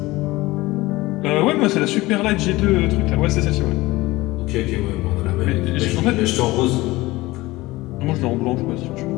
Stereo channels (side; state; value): right; quieter; 19.7 dB